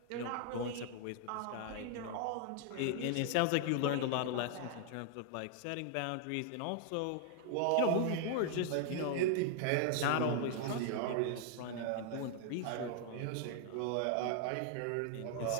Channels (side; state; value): both; different; correlation 0.00